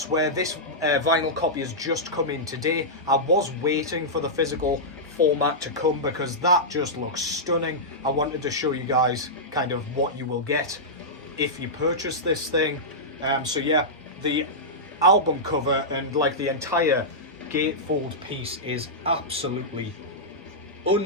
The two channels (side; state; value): both; normal; correlation -0.12